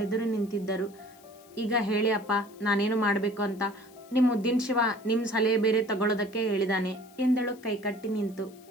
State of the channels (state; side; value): noise; left; hiss, 26 dB below the sound